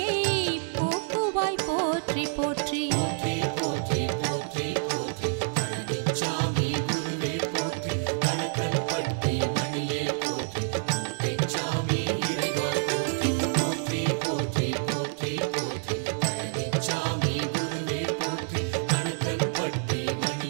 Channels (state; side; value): silent; left; 60 dB below the other